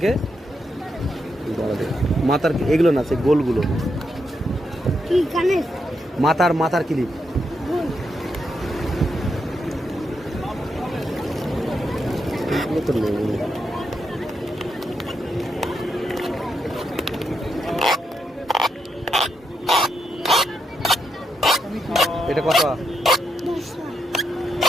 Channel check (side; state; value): both; normal; correlation 0.82